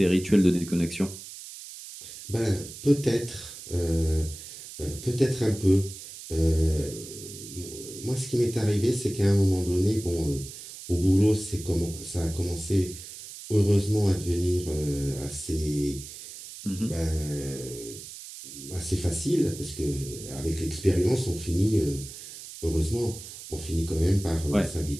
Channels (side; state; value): right; noise; hiss, 13 dB below the sound